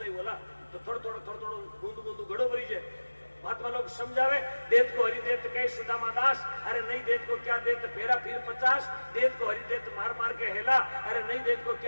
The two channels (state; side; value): inverted; both; correlation -1.00